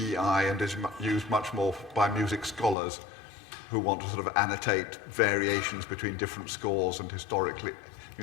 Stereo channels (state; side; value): drops out; right; at 2.8 s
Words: and is used much more by music scholars who want to sort of annotate variations between different scores and historically,